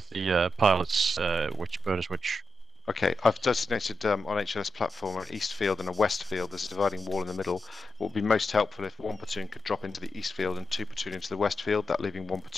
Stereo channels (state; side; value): normal; both; correlation 0.87